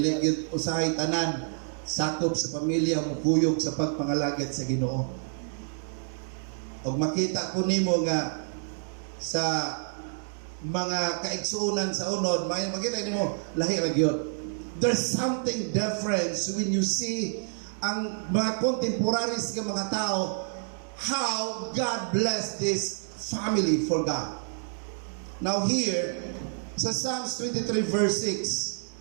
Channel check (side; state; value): left; silent; digital silence